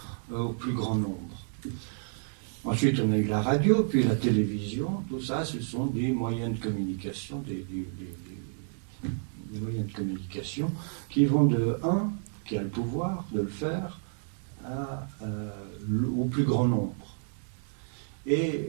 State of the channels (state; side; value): silent; left; 58 dB below the other